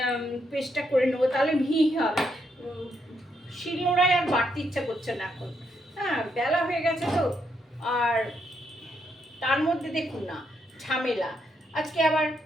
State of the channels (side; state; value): both; normal; correlation 0.78